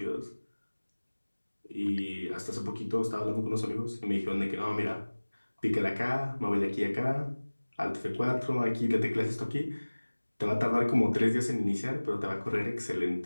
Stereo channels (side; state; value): both; inverted; correlation -1.00